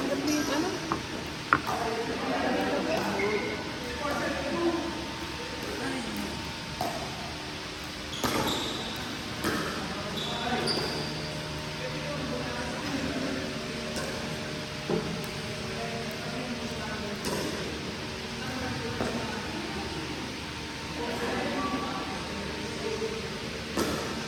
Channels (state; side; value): identical; both; correlation 1.00